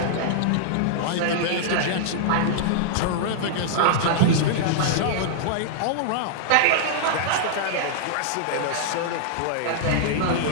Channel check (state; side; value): different; both; correlation -0.01